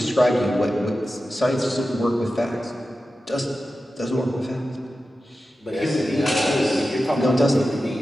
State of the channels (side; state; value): both; normal; correlation 0.93